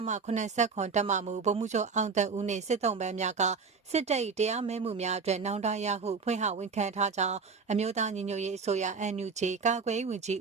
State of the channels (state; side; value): quieter; left; 5.1 dB